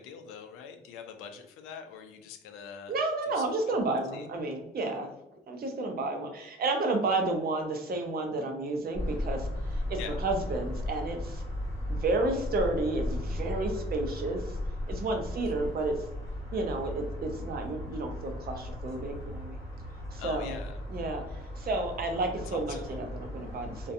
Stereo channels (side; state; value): both; normal; correlation 0.45